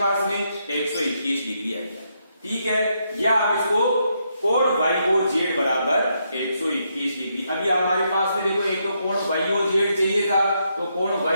पास में 121 डिग्री आ गया। ठीक है, या आप इसको कोण y o z बराबर 121 डिग्री। अभी हमारे पास में देखो, एक तो कोण y o z चाहिए था तो कोण y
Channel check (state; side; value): inverted; both; correlation -0.78